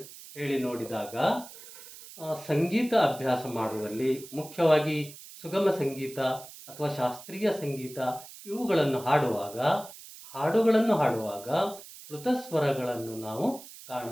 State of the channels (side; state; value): right; noise; hiss, 16 dB below the sound